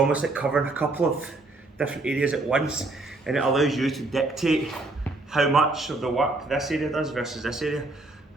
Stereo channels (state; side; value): quieter; left; 3.1 dB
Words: like covering a couple of different areas at once, and it allows you to dictate how much of the work this area does versus this area.